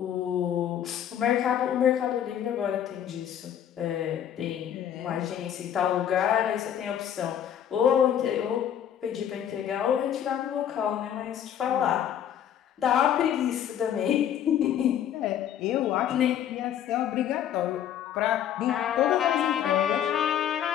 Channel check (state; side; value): quieter; right; 10.0 dB